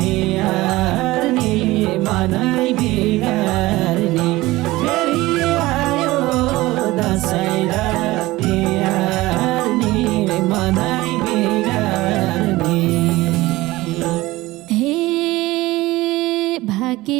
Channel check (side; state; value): left; quieter; 19.1 dB